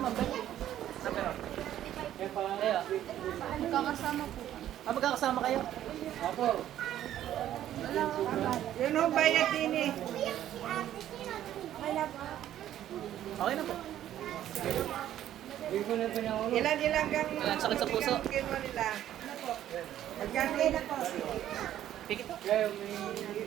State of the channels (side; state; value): left; quieter; 11.9 dB